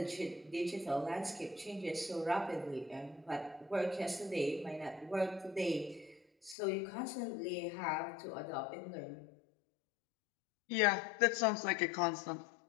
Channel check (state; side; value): drops out; right; at 6.6 s